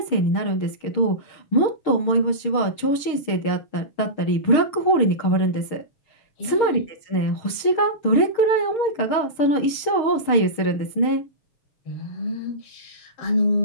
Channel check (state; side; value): late; right; 6.6 ms